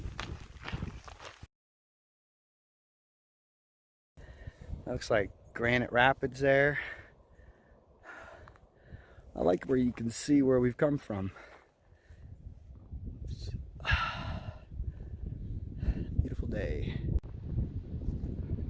Looks like Granite Rapids there. I like where you can see where we've come from. Beautiful day.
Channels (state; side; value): identical; both; correlation 1.00